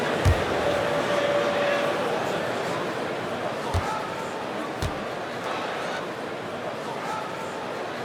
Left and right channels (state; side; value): identical; both; correlation 1.00